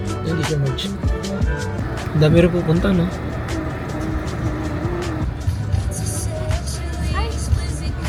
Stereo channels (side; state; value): both; identical; correlation 1.00